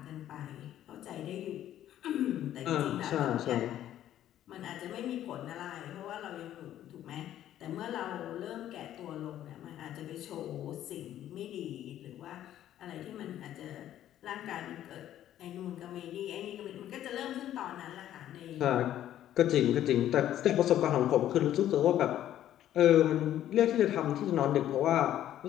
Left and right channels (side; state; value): right; quieter; 12.0 dB